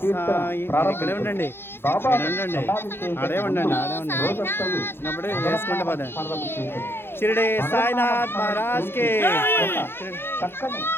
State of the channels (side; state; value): right; late; 0.11 ms